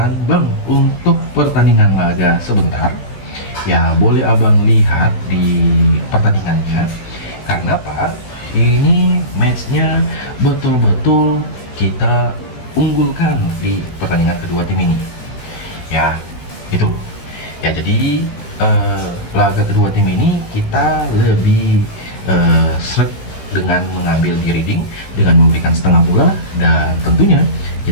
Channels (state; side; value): late; right; 16 ms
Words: bang, untuk pertandingan laga sebentar ya boleh abang lihat di pertandingannya, karena apa, ini matchnya betul-betul kita unggulkan di pertandingan kedua tim ini ya, itu ya. Jadi laga kedua tim ini kita lebih sreg dengan mengambil Reading dengan memberikan setengah bola, dan tentunya